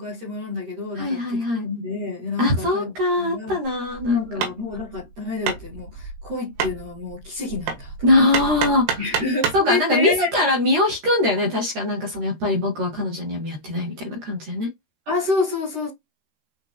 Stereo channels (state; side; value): late; left; 13 ms